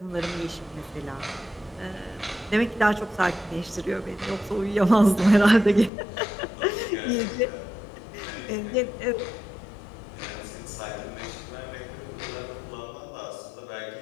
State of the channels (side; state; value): right; drops out; at 5.9 s